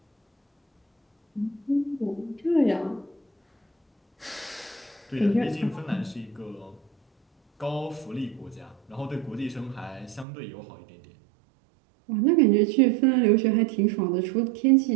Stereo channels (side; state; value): left; drops out; at 10.2 s